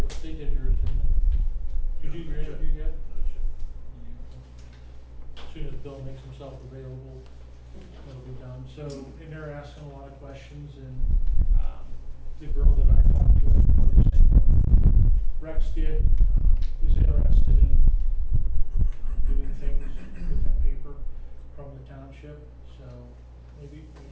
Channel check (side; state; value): both; identical; correlation 1.00